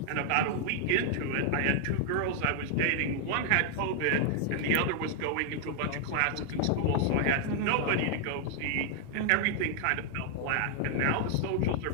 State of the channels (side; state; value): both; different; correlation 0.00